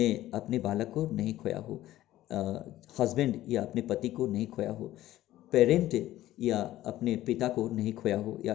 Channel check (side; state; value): right; quieter; 14.6 dB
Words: अपने बालक को नहीं खोया हो, हस्बैंड या अपने पति को नहीं खोया हो, पेरेंट या अपने पिता को नहीं खोया हो, या